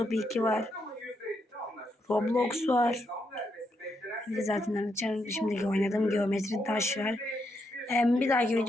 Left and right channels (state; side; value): normal; both; correlation 0.80